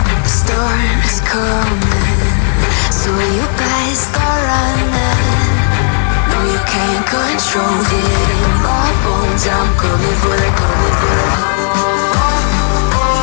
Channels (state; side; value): silent; right; 72 dB below the other